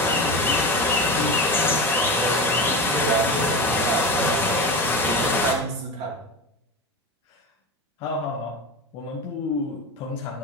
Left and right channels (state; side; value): normal; both; correlation 0.24